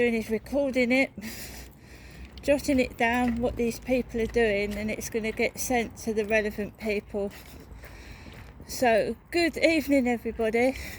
is recording it, jotting it down what these people are doing, and it's going to get sent to the relevant people. So good evening everybody.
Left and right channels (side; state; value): both; identical; correlation 1.00